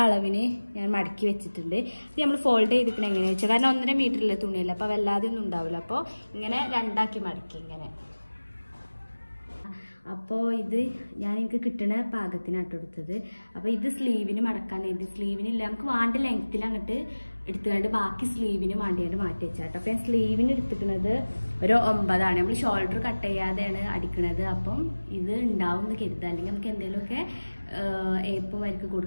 അളവിന് ഞാൻ മടക്കി വെച്ചിട്ടുണ്ട്. ഇത് നമ്മൾ ഫോൾഡ് ചെയ്തിരിക്കണം എങ്ങനെയാണെന്ന് വെച്ചാൽ, കാരണം 1.5 മീറ്ററിലെ തുണിയല്ല, അപ്പോൾ വല്ലാതെ ഒന്നും ഉണ്ടാവില്ല. അപ്പോൾ ഇങ്ങനെ രണ്ടാക്കി മടക്കി ഇങ്ങനെ. അപ്പോൾ ഇത് എനിക്ക് കിട്ടുന്ന പാകത്തിനാട്ടോ എടുത്തത്. അപ്പോൾ ഇത് സ്ലീവിന് മടക്കാൻ, ഇത് സ്ലീവിനില്ല, നമുക്ക് വേണ്ട ലെങ്ത്തിൽ അങ്ങോട്ട് എടുത്തുകൊണ്ട് ബാക്കി സ്ലീവിന് വേണ്ടിയാണ്ട് മാറ്റി വെച്ചാട്ടോ. അപ്പോൾ ഞാൻ സ്ലീവിന് എടുത്തിരിക്കുന്നത് ഒരു 9 ആണ്. നമ്മൾ ഷോൾഡർ കട്ട് ചെയ്യാതെയാണ് അടിക്കുന്നത്. അപ്പം ഇത് ഉണ്ടാവും എന്ന് കരുതുക, അല്ലെങ്കിൽ നമുക്ക് എന്തെങ്കിലുമൊക്കെ ഏപ്പം വരക്ക്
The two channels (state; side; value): inverted; both; correlation -1.00